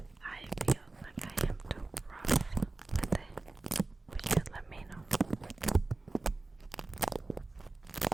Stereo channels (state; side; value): quieter; left; 3.2 dB